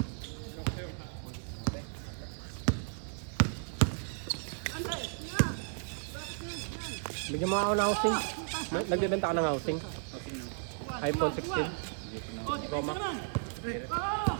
Bigyan mo ako ng housing. Nagbibenta ka ng housing. iPhone 16. Pro Max.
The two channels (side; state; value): left; silent; digital silence